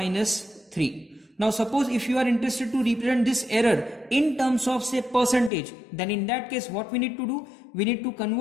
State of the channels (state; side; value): drops out; right; at 5.5 s